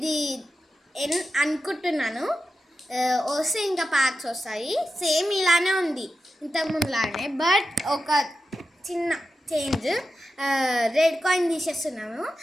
అనుకుంటున్నాను వస్తే ఇంకా ప్యాక్స్ వస్తాయి. సేమ్ ఇలానే ఉంది ఇంతకుముందులానే, బట్ ఒక చిన్న చేంజ్. Red coin తీసేస్తున్నాము.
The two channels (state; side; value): normal; both; correlation 0.91